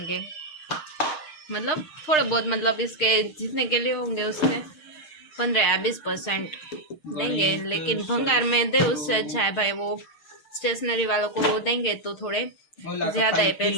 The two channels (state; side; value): late; right; 6.5 ms